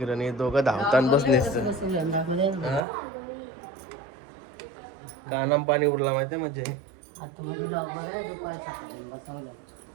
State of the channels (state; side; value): drops out; left; at 2.8 s